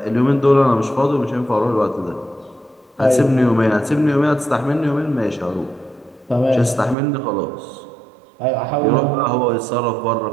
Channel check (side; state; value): left; drops out; at 7.0 s